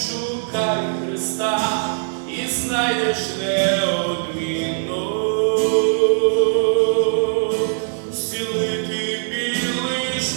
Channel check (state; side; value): silent; left; 57 dB below the other